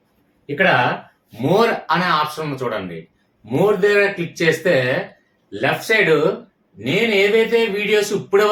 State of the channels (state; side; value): identical; both; correlation 1.00